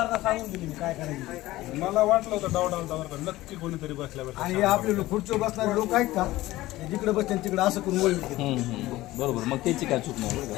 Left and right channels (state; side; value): quieter; right; 17.2 dB